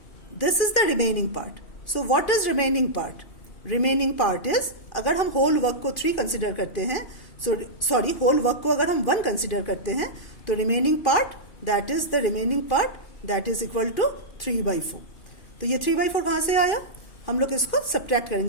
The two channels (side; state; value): right; late; 2.5 ms